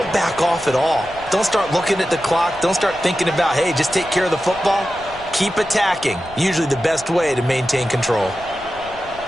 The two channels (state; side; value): noise; left; rumble, 20 dB below the sound